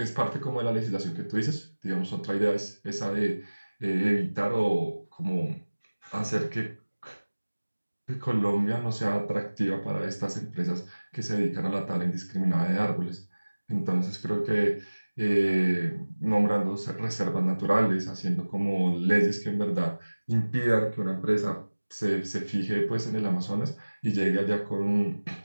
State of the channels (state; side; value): inverted; both; correlation -1.00